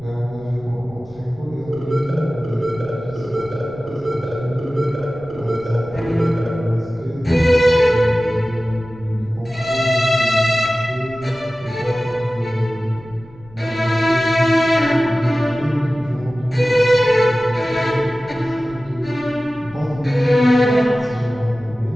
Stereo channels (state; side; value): noise; left; rumble, 23 dB below the sound